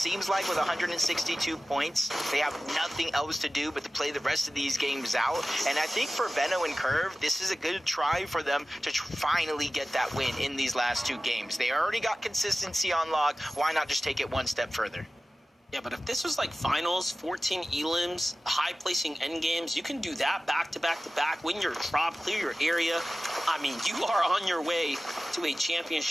like with 162 points, they have nothing else to do but to play the rest of these games out. And I think for Veno and Curve, this is a good try for them to finally get that win in these last 2 games. They already got consistency on lock. Why not just take it one step further? Yeah, but if this was like finals, 14 elims, high-placing endgames, you can do that back-to-back-to-back, win your drop, clear your area. I mean, you are on your way to a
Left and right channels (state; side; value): normal; both; correlation 0.96